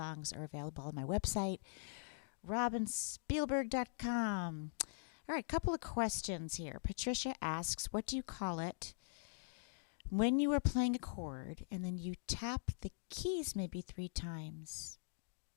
are available on my website, robinspielberg.com. All right, couple of questions here. Patricia asks, what do you call it when you are playing a chord and then you tap the keys maybe 3 times?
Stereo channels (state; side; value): silent; right; digital silence